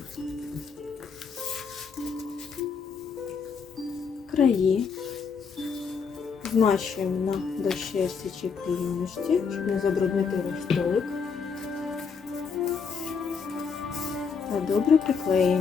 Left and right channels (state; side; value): quieter; right; 5.7 dB